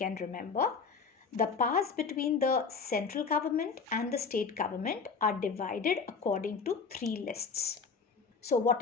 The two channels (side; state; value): right; quieter; 5.3 dB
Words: remember. The powers between the central government and the state government are divided according to three lists. So what